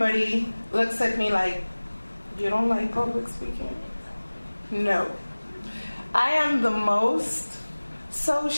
looks at me like, you don't like public speaking? No. I am the most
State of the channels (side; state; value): both; inverted; correlation -1.00